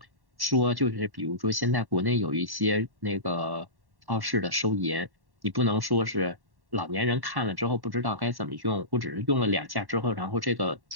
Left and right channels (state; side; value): late; left; 1.1 ms